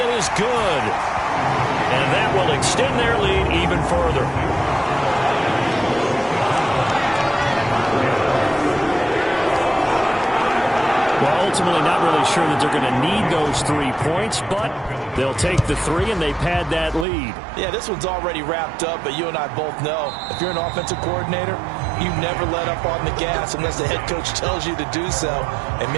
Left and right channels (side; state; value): left; drops out; at 17.1 s